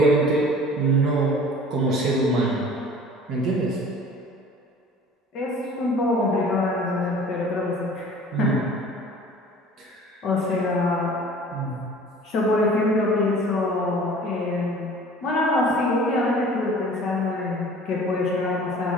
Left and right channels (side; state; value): both; normal; correlation 0.46